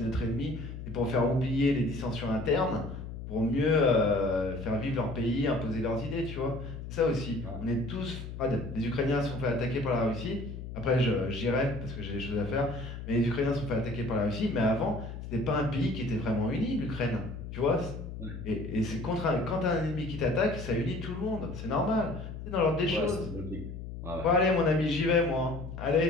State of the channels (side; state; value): left; noise; hum, 9 dB below the sound